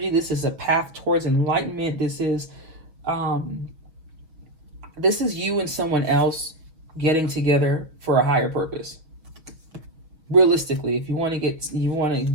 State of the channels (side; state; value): left; late; 6.3 ms